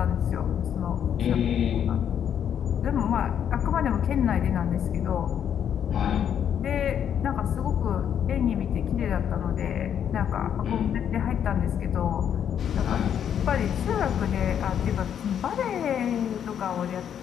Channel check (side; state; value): right; quieter; 8.9 dB